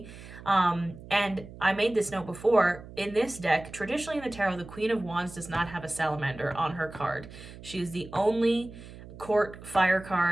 And I made this note before, in this deck, traditionally in the tarot, the Queen of Wands does not have a salamander on her card. She is the only court fire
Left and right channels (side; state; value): right; noise; hum, 16 dB below the sound